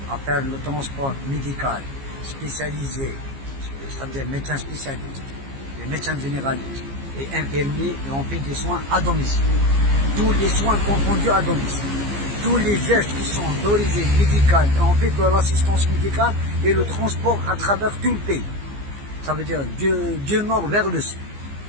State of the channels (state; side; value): late; left; 15 ms